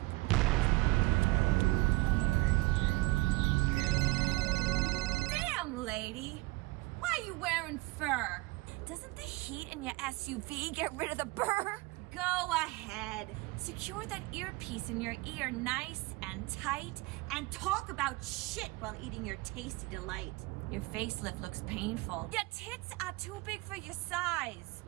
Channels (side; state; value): left; quieter; 22.3 dB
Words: Damn, lady, why are you wearing fur? Doesn't the heat in your SUV get rid of the burr? Go ahead. Secure that earpiece in your ear nice and tight and talk about shit while eating your tasty delight. Your facelift looks painful. Your tits are too big for your size.